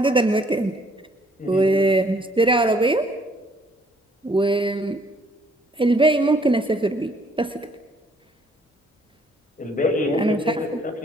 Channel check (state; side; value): normal; both; correlation 0.64